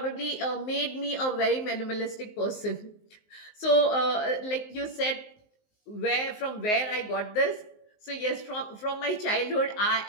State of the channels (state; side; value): late; right; 19 ms